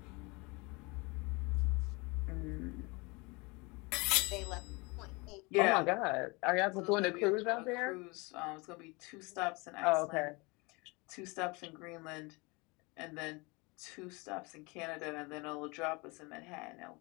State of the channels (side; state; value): right; quieter; 27.0 dB